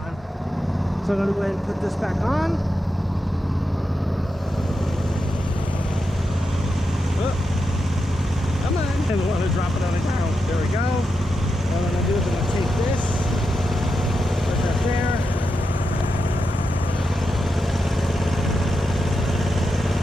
So I'm gonna go ahead and put this back on. Oh, come on! And we want to drop it on the ground. There we go. What I'm gonna do is I'm gonna take this, put that there.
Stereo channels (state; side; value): normal; both; correlation 0.87